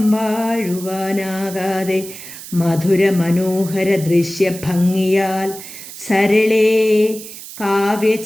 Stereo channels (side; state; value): right; noise; hiss, 13 dB below the sound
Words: വാഴുവാനാകാതെ മധുര മനോഹര ദൃശ്യഭംഗിയാൽ സരളേ